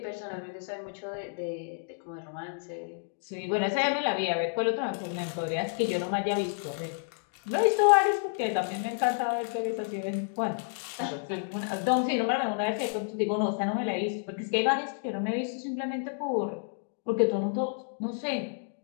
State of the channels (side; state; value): right; silent; digital silence